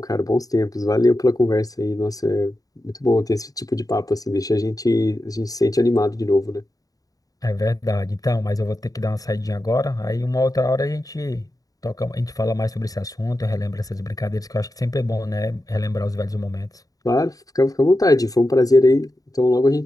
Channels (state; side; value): late; right; 0.17 ms